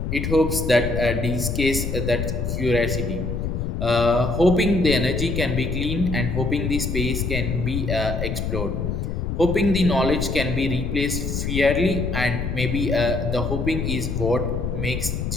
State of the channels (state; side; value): noise; left; rumble, 2 dB below the sound